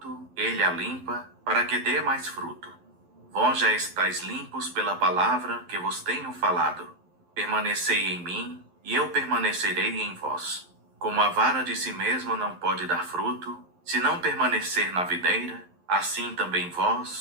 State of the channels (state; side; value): late; left; 11 ms